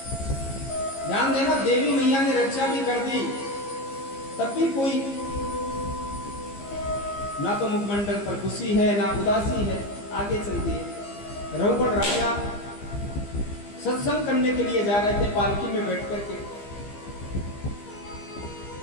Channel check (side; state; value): right; late; 15 ms